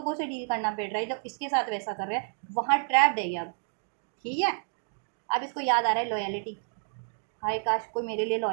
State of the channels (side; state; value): left; silent; digital silence